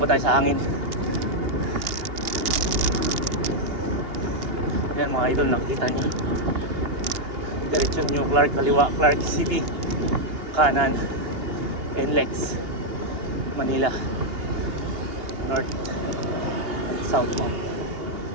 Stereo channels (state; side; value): late; left; 2.8 ms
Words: tayo sa hangin. Yan mga idol, nakikita nyo diretsyon New Clark, kaliwa Clark City, kanan NLEX, Manila, north and southbound.